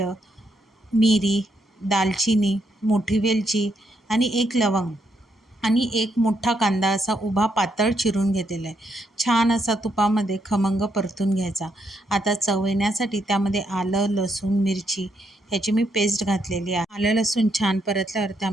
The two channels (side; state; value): both; normal; correlation 0.77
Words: मिरी, दालचिनी, मोठी वेलची आणि 1 लवंग आणि 1 मोठा कांदा असा उभा पातळ चिरून घेतलेला आहे. छान असा तुपामध्ये खमंग परतून घ्यायचा. आता चव येण्यासाठी त्यामध्ये आलं, लसूण, मिरची ह्याची मी पेस्ट घातलेली आहे. आलं लसूण छान परतल्यावर